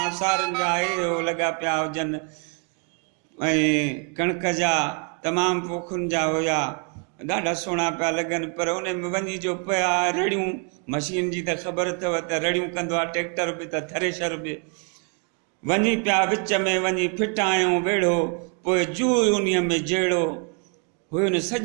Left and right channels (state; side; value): quieter; left; 38.6 dB